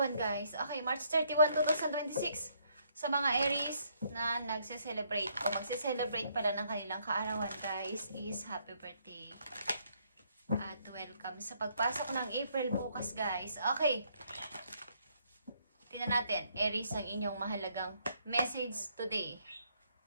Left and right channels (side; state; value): both; inverted; correlation -0.70